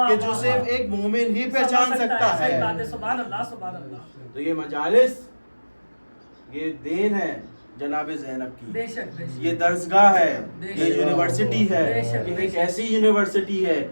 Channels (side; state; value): both; inverted; correlation -1.00